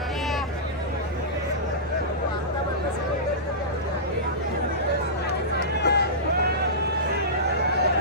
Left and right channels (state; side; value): normal; both; correlation -0.17